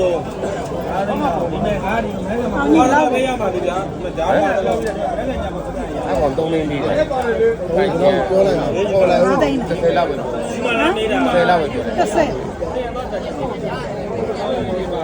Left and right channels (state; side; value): identical; both; correlation 1.00